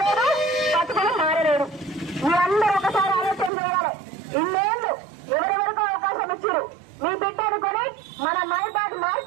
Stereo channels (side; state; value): left; drops out; at 3.5 s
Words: బతుకులు మారలేదు. మీరందరూ ఒకసారి ఆలోచన చేయాలి. ఇన్నేళ్లు ఎవరెవరికో అవకాశం ఇచ్చారు. మీ బిడ్డ అనుకొని మన మైబాద్